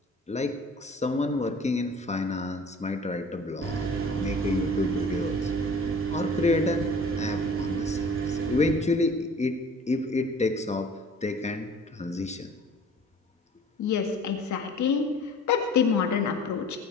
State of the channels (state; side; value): normal; both; correlation 0.47